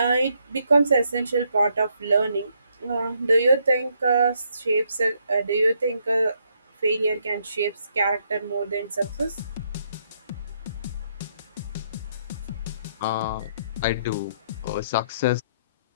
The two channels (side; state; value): both; inverted; correlation -0.73